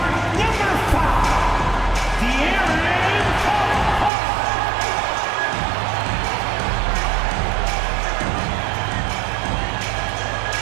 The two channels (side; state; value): left; drops out; at 4.1 s